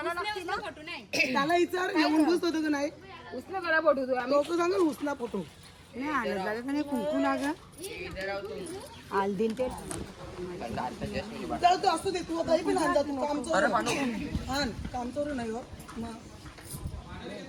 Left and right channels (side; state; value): both; identical; correlation 1.00